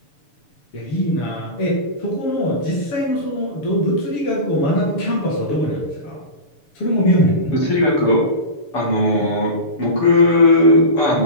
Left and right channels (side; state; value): right; late; 6.8 ms